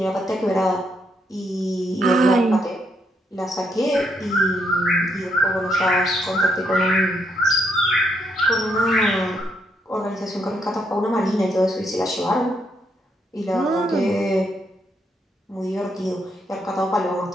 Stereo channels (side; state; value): both; normal; correlation 0.76